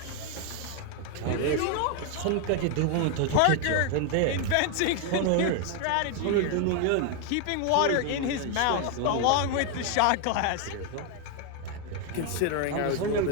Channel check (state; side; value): different; both; correlation 0.00